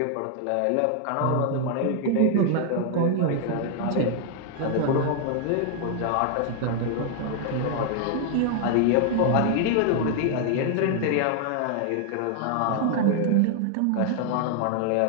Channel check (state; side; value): different; both; correlation 0.00